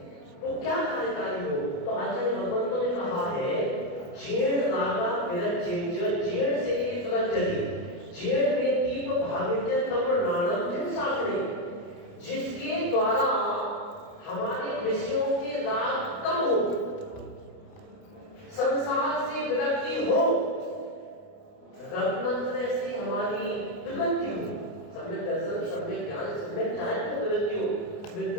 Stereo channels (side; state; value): right; late; 29 ms